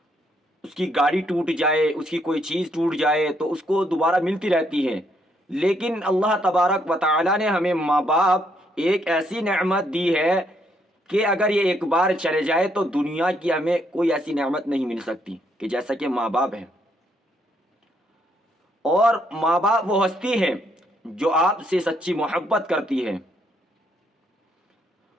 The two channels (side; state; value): both; normal; correlation 0.73